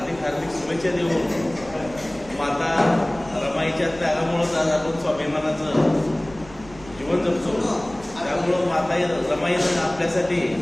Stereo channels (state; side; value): noise; right; rumble, 20 dB below the sound